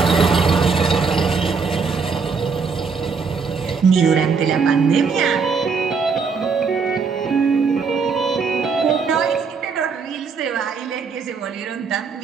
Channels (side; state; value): left; quieter; 5.2 dB